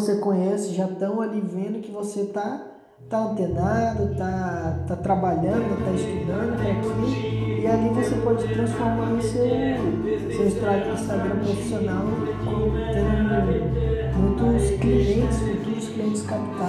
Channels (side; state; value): both; identical; correlation 1.00